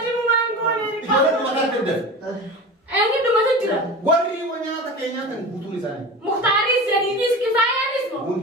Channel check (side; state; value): both; normal; correlation 0.32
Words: Eenyu dhumata jira. warri nyaata kee nyaatan guutuun isaanii. Muhtaaris, Jadiidis, Kifaayaanis moo?